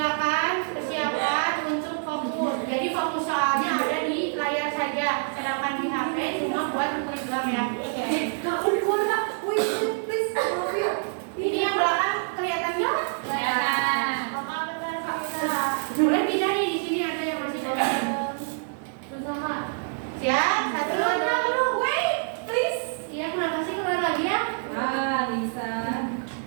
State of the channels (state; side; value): silent; left; digital silence